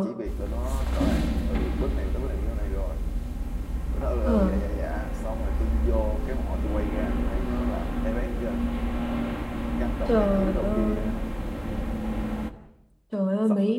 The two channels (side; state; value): both; identical; correlation 1.00